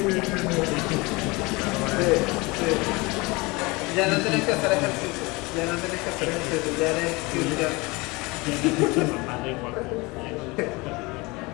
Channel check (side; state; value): right; quieter; 24.7 dB